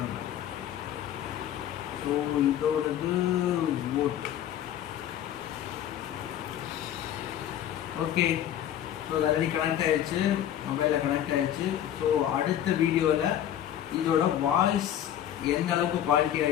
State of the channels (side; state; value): right; quieter; 10.9 dB